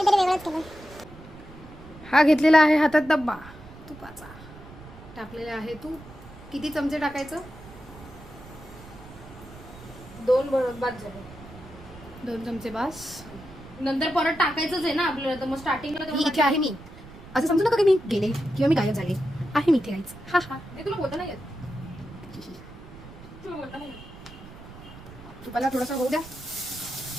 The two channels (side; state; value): right; noise; rumble, 18 dB below the sound